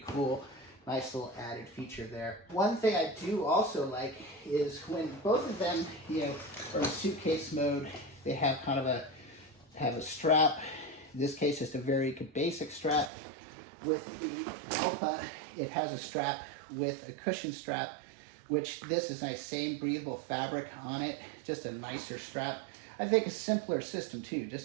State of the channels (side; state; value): left; drops out; at 13.1 s